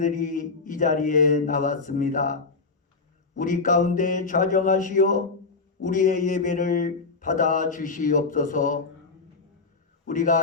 이 자리에 나왔습니다. 우리 가운데 좌정하시어 우리의 예배를 받아 주시옵소서.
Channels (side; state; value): right; quieter; 4.2 dB